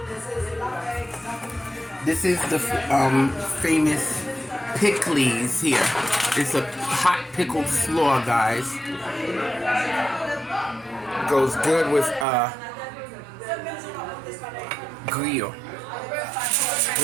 This is the famous pickles here. It's a hot pickled slaw, guys. Goes good with grill.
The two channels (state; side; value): drops out; left; at 12.2 s